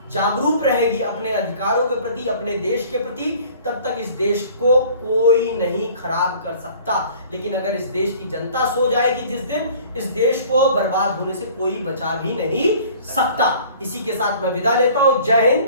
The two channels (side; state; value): both; inverted; correlation -0.50